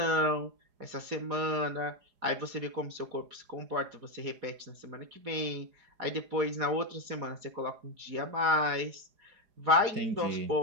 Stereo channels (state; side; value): late; left; 4.8 ms